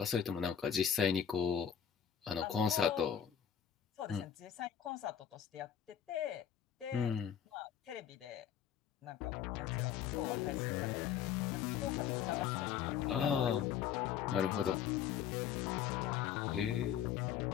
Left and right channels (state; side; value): quieter; right; 8.9 dB